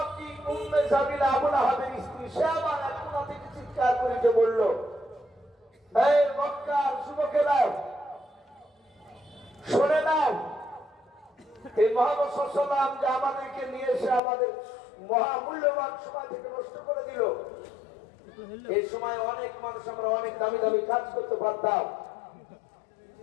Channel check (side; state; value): right; drops out; at 14.2 s